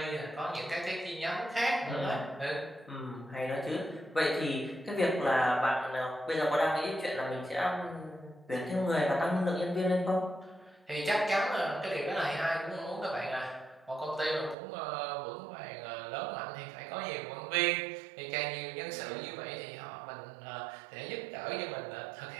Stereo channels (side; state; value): left; drops out; at 14.6 s